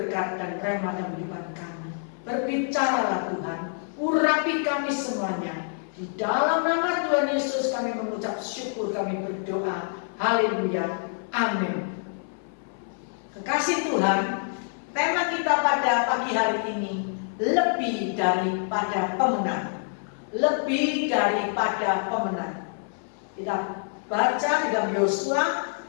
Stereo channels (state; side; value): silent; right; 60 dB below the other